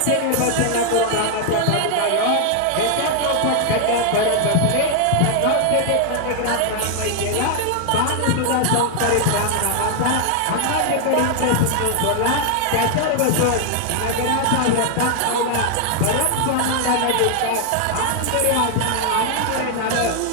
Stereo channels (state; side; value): different; both; correlation 0.00